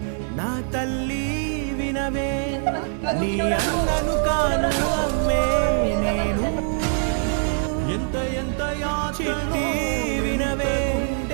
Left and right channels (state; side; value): silent; left; digital silence